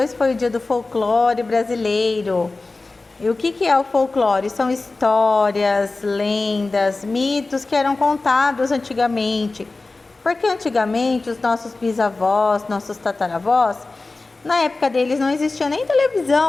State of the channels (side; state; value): right; quieter; 3.4 dB